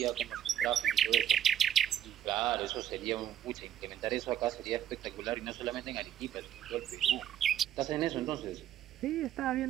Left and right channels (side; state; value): left; quieter; 10.8 dB